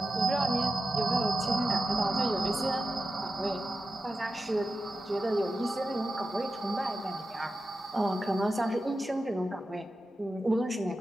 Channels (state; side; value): normal; both; correlation 0.92